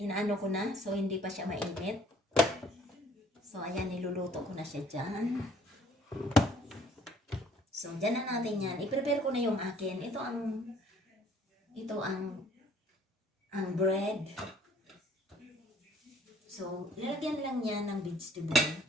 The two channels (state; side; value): normal; both; correlation 0.58